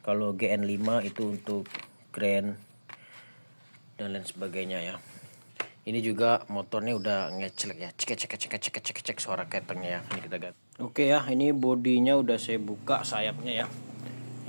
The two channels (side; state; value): both; inverted; correlation -1.00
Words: Kalau GN5 itu untuk Grand dan lain sebagainya ya. Ini juga motornya udah ngecelek ya, cek suara ketengnya ya. Ini kita ganti. Oke ya, ini bodinya udah saya buka sayapnya ya.